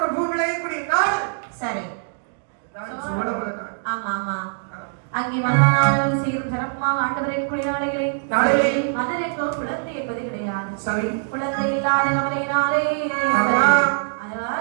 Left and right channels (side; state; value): left; silent; digital silence